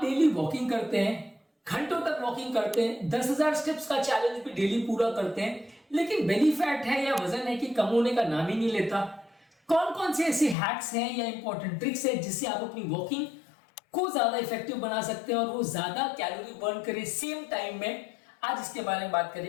वॉकिंग करते हैं, घंटों तक वॉकिंग करते हैं, 10,000 स्टेप्स का चैलेंज भी डेली पूरा करते हैं, लेकिन बेली फैट है या वजन है कि कम होने का नाम ही नहीं लेता। कौन कौन से ऐसे हैक्स हैं या इंपॉर्टेंट ट्रिक्स हैं जिससे आप अपनी वॉकिंग को ज्यादा इफेक्टिव बना सकते हैं और वो ज्यादा कैलोरी बर्न करे सेम टाइम में, आज इसके बारे में बात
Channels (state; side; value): drops out; right; at 10.6 s